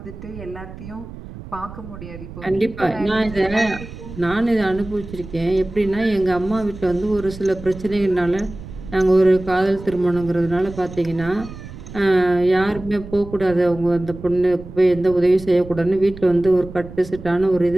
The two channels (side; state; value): right; noise; rumble, 14 dB below the sound